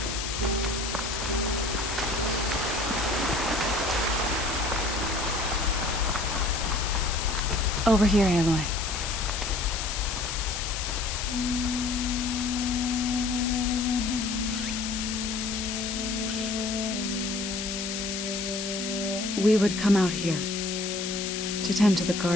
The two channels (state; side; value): noise; left; hiss, 4 dB below the sound